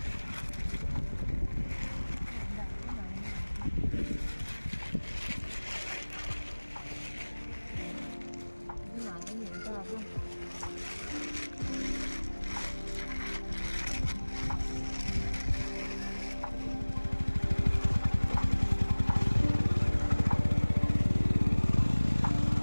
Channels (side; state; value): both; inverted; correlation -1.00